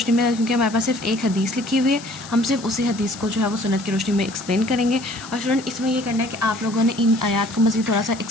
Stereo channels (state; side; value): noise; left; hiss, 16 dB below the sound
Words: میں، کیونکہ ہمارے پاس صرف ایک حدیث لکھی ہوئی ہے، ہم صرف اسی حدیث کو جو ہے وہ سنت کی روشنی میں ایکسپلین کریں گے۔ اور اسٹوڈنٹ اس میں یہ کرنا ہے کہ آپ لوگوں نے ان آیات کو مزید تھوڑا سا